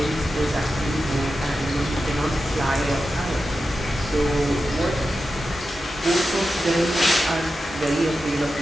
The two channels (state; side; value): normal; both; correlation 0.91